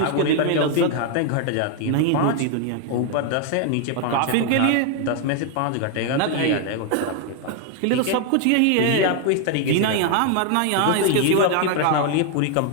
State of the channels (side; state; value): both; different; correlation 0.00